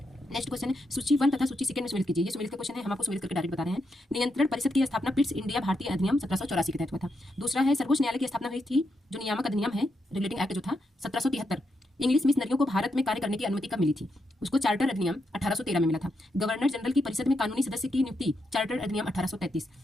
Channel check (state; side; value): normal; both; correlation 0.82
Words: नेक्स्ट क्वेश्चन है, सूची 1 तथा सूची सेकंड में सम्मिलित कीजिए। ये सम्मिलित का क्वेश्चन है, हम आपको सम्मिलित करके डायरेक्ट बता रहे हैं। नियंत्रण परिषद की स्थापना पिट्स इंडिया भारतीय अधिनियम 1784 के तहत हुआ था। दूसरा है, सर्वोच्च न्यायालय की स्थापना हुई थी, जो नियामक अधिनियम है, रेगुलेटिंग एक्ट जो था 1773। इंग्लिश मिशनरियों को भारत में कार्य करने की अनुमति कब मिली थी? उसको चार्टर अधिनियम 1813 में मिला था। गवर्नर जनरल की परिषद में कानूनी सदस्य की नियुक्ति चार्टर अधिनियम 1833।